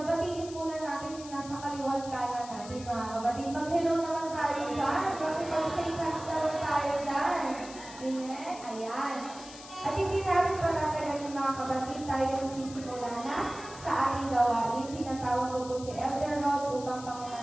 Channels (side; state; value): left; noise; hiss, 15 dB below the sound